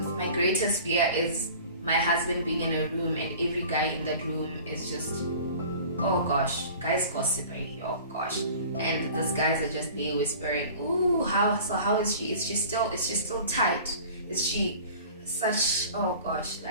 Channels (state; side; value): inverted; both; correlation -0.43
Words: greatest fear is my husband being in a room and every guy in that room is just, oh gosh, guys gossiping, oh gosh, and these guys are just there whispering, ooh, how is she? Is she still tight? Is she such, oh gosh,